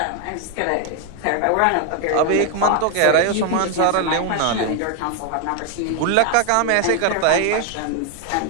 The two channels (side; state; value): both; different; correlation 0.01